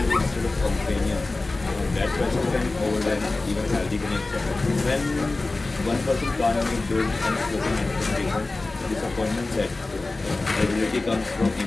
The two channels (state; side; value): quieter; right; 3.3 dB